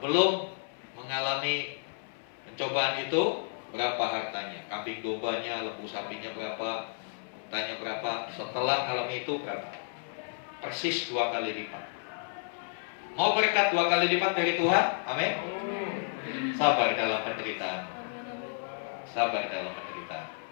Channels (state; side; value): silent; right; 57 dB below the other